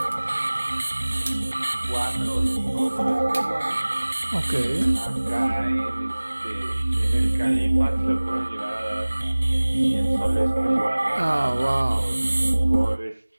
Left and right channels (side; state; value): both; inverted; correlation -1.00